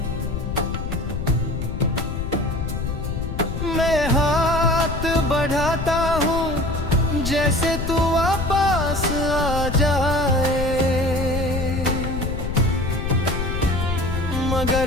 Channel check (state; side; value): noise; left; rumble, 4 dB below the sound